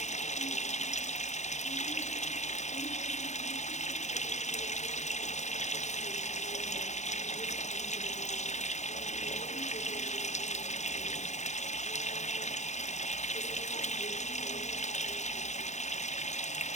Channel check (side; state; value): right; late; 0.34 ms